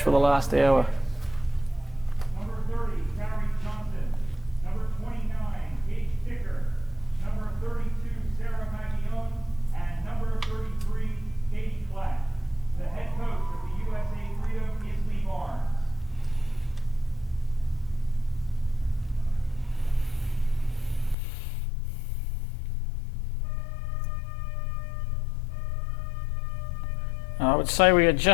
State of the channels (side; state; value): right; drops out; at 21.2 s